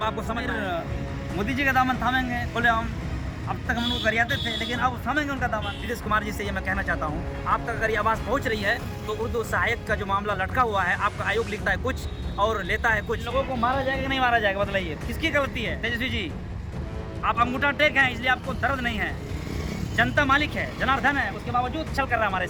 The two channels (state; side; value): identical; both; correlation 1.00